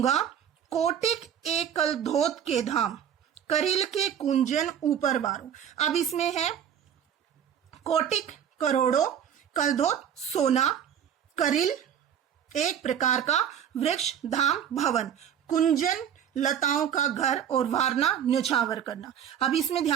कोटिक एक कल धोत के धाम, करिल के कुंजन ऊपर वारो। अब इसमें है कोटिक करोड़ों, कलधोत सोना, करिल एक प्रकार का वृक्ष, धाम भवन, कुंजन लताओं का घर, और वारना न्यौछावर करना। अब इसमें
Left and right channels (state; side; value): quieter; left; 9.1 dB